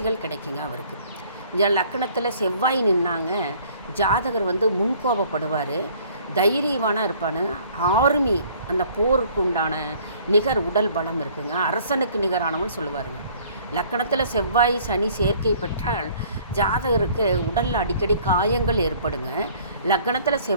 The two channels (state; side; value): inverted; both; correlation -0.56